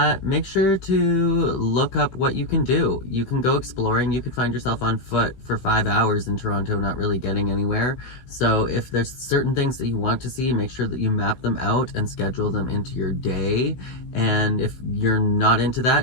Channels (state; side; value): late; right; 16 ms